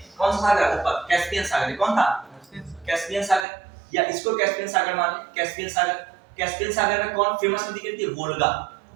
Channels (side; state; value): left; drops out; at 3.5 s